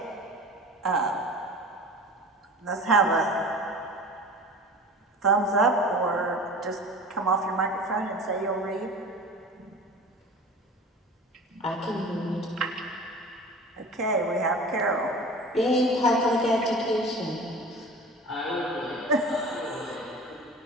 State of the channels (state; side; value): normal; both; correlation 0.38